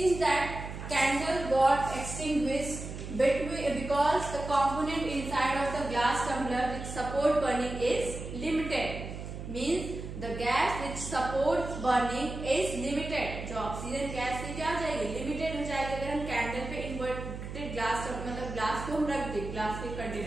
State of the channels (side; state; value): right; noise; hum, 8 dB below the sound